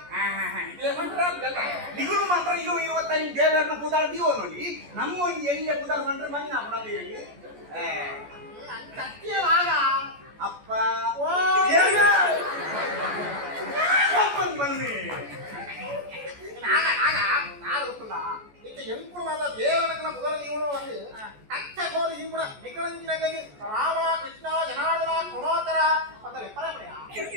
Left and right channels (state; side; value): late; left; 14 ms